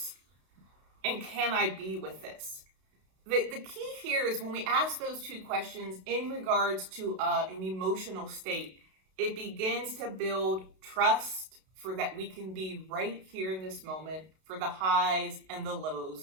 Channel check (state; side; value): late; left; 32 ms